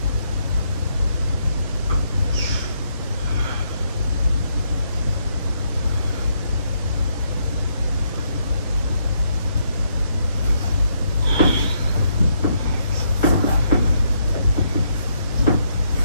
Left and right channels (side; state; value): both; inverted; correlation -0.75